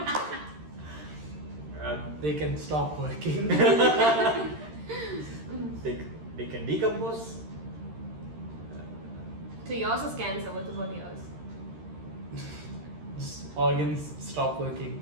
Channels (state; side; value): late; left; 13 ms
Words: They can stop working. They can decompose. So yours is cancer. What about yours? Organs stop working.